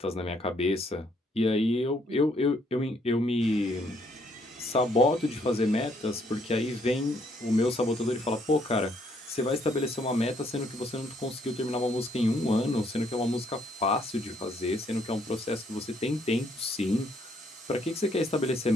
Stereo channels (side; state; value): both; normal; correlation 0.69